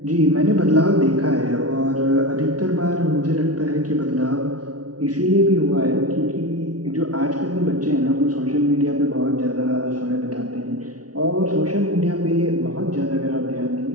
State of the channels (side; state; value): left; late; 0.68 ms